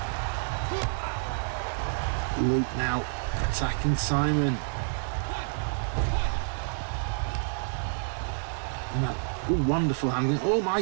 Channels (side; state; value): left; silent; digital silence